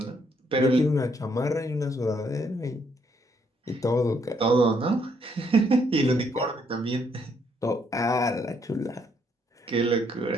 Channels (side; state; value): both; normal; correlation 0.71